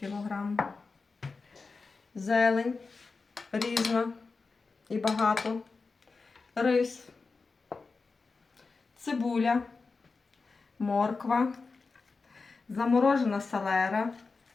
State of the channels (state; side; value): quieter; right; 4.3 dB